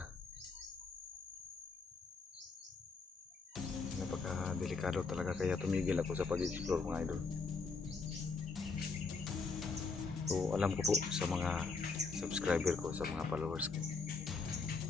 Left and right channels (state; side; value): quieter; right; 4.5 dB